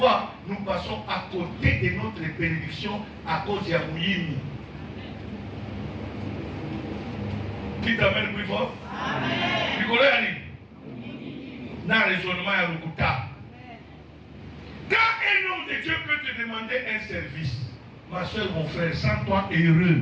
nous passons à côté de notre bénédiction à cause de Yamouyimi. Qui t'amène plus fort? Amen. Nicolas Ali. Dans le raisonnement à Lukuta. Quand un homme de Dieu peut te demander un service, ma soeur, mon frère, sens-toi heureux.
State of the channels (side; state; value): both; identical; correlation 1.00